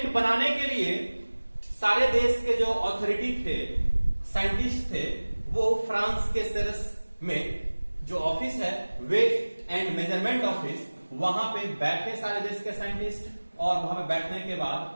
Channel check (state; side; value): inverted; both; correlation -1.00